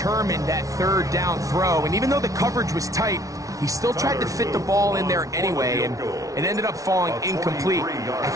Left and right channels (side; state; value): left; late; 0.17 ms